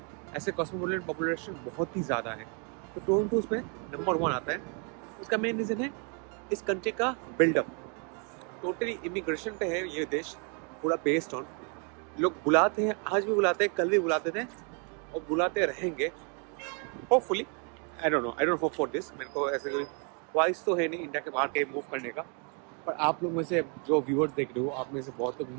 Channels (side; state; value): left; quieter; 37.9 dB